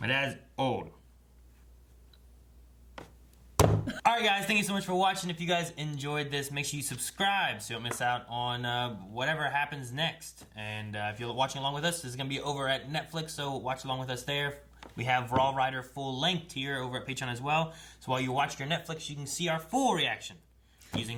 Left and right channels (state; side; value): identical; both; correlation 1.00